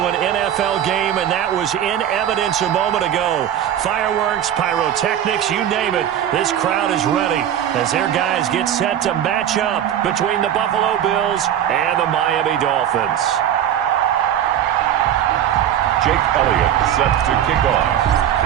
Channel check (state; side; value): quieter; left; 10.3 dB